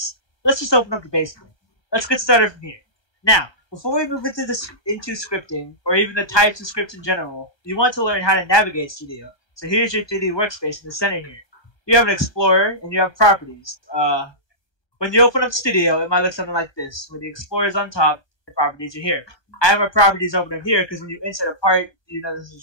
Let's just open up the basic. Let's get started from here. Now, before we move into scripting, or even the types of scripts in general, you want to learn how to navigate Studio. So here's your 3D workspace in the center here. You have an Explorer, and you have properties. When you open up Studio, it might look something like this. When the Explorer is on top, the properties are here. I have my properties open up here because when you insert a part, you know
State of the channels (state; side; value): late; right; 1.3 ms